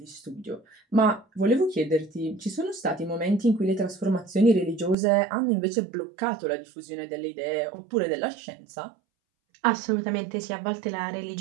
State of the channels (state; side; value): drops out; left; at 5.0 s